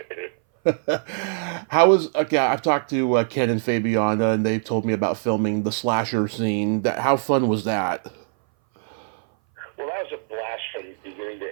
How was, I've talked to Ken and Fabiana, and they've told me about filming the slasher scene. How fun was that? Well, that was a blast from beginning to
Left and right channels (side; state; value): left; silent; 60 dB below the other